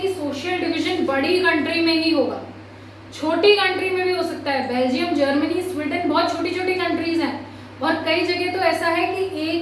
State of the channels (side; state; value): both; identical; correlation 1.00